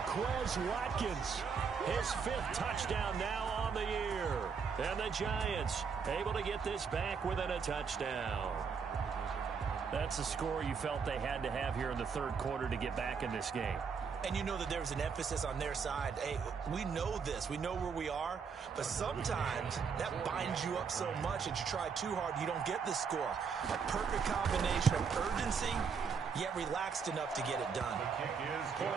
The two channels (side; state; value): left; quieter; 6.0 dB